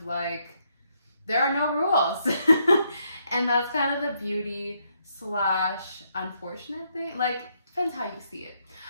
like, there are no rules. And that's kind of the beauty / unfortunate thing. Like, depends how you see it.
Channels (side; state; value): both; inverted; correlation -0.75